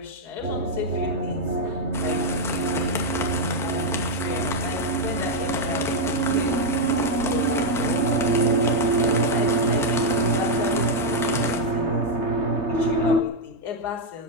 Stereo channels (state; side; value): normal; both; correlation -0.01